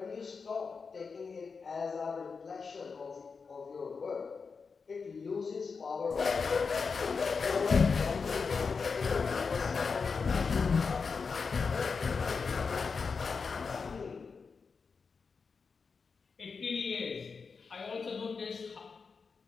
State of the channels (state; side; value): quieter; right; 5.1 dB